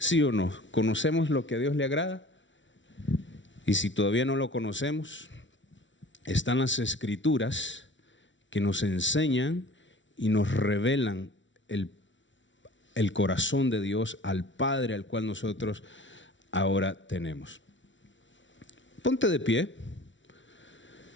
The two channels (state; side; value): late; right; 0.55 ms